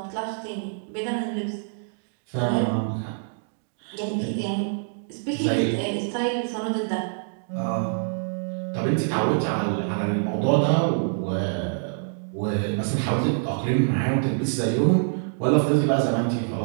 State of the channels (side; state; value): left; silent; digital silence